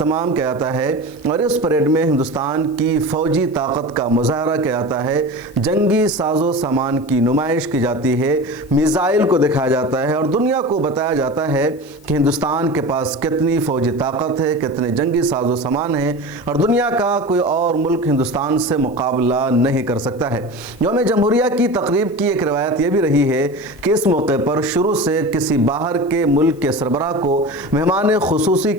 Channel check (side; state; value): left; noise; hiss, 29 dB below the sound